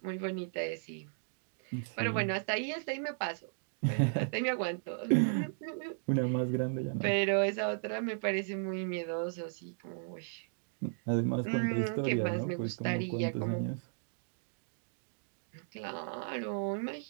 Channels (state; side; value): silent; left; digital silence